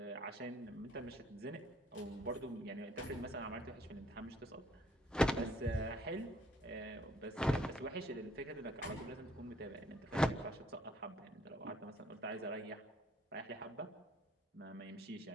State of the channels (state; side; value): normal; both; correlation 0.64